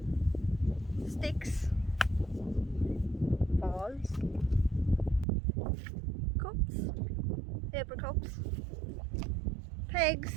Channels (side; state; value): left; drops out; at 5.2 s